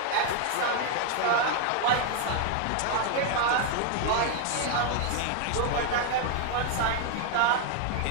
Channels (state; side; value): different; both; correlation 0.00